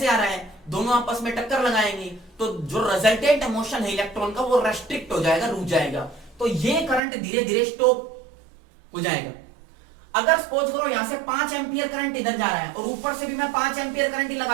आ रहा है, दोनों आपस में टक्कर लगाएंगे, तो जो रिजल्टेंट मोशन है इलेक्ट्रॉन का वो रेस्ट्रिक्ट हो जाएगा, रुक जाएगा, तो ये करंट धीरे धीरे स्टॉप हो जाएगा। अगर सपोज करो यहां से 5 एम्पियर करंट इधर जा रहा है, और ऊपर से भी मैं 5 एम्पियर करंट ही लगा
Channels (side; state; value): left; drops out; at 7.0 s